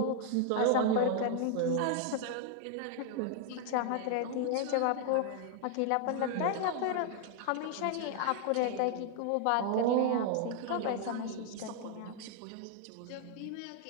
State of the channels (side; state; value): both; different; correlation 0.00